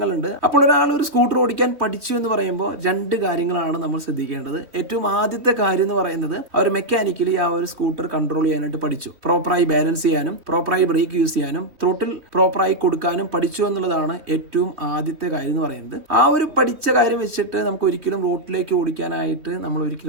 അപ്പോൾ ഒരാൾ ഒരു സ്കൂട്ടർ ഓടിക്കാൻ പഠിച്ചു എന്ന് പറയുമ്പോൾ രണ്ട് കാര്യങ്ങളാണ് നമ്മൾ ശ്രദ്ധിക്കേണ്ടത്. ഏറ്റവും ആദ്യത്തെ കാര്യം എന്ന് പറയുന്നത് അവർ മെക്കാനിക്കലി ആ ഒരു സ്കൂട്ടർ കൺട്രോൾ ചെയ്യാനായിട്ട് പഠിച്ചു, പ്രോപ്പറായി ബാലൻസ് ചെയ്യാനും പ്രോപ്പറായി ബ്രേക്ക് യൂസ് ചെയ്യാനും ത്രോട്ടിൽ പ്രോപ്പറായി കൊടുക്കാനും പഠിച്ചു എന്നുള്ളതാണ് ഏറ്റവും ആദ്യത്തെ കാര്യം എന്ന് പറയുന്നത്. ആ ഒരു പഠിച്ച കാര്യം വെച്ചിട്ട് നമുക്ക് ഒരിക്കലും റോഡിലേക്ക് ഓടിക്കാനായിട്ട് നമ്മൾ ഒരിക്കലും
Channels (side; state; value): left; late; 3.4 ms